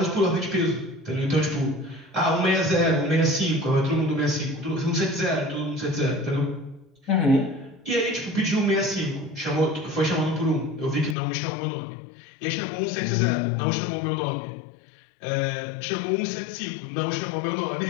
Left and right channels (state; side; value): drops out; right; at 11.2 s